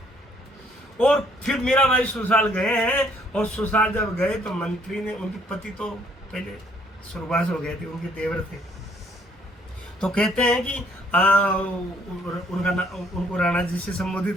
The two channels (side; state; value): both; normal; correlation 0.65